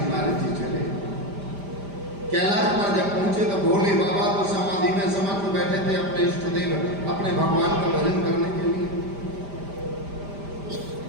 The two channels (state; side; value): late; left; 5.0 ms